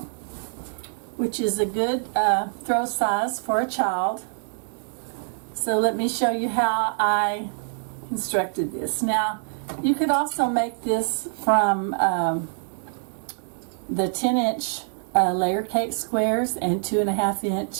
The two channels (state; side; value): silent; left; 62 dB below the other